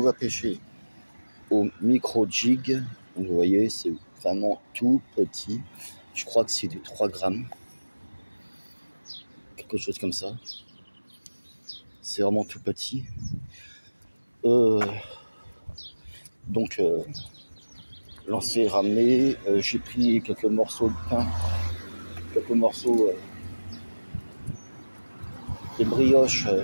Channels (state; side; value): inverted; both; correlation -1.00